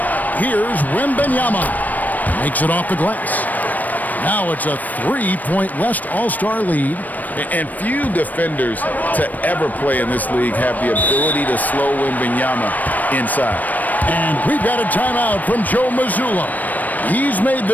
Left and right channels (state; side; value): late; right; 0.082 ms